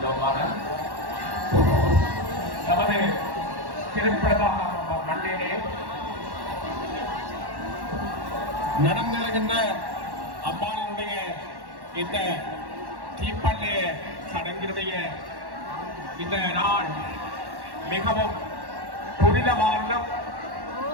நமது திருப்பலகாம மண்ணிலே நடந்திருக்கின்ற அம்பாளினுடைய இந்த தீப்பள்ளிய சடங்கினுடைய இந்த நாள் மிகவும் புனிதமானதும்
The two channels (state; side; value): late; left; 1.1 ms